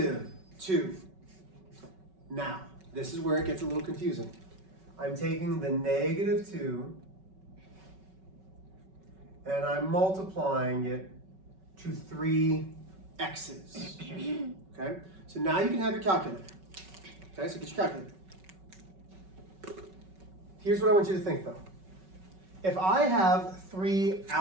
Now, this is where it gets a little confusing. I'm taking the -2 and I'm multiplying it to 3 x's. Okay? So now you can have your calculator. Okay, so get your calculator. Here's what I want you to think though. If I have 3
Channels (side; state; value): left; late; 5.3 ms